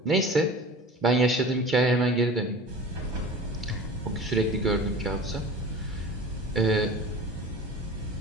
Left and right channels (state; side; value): normal; both; correlation 0.38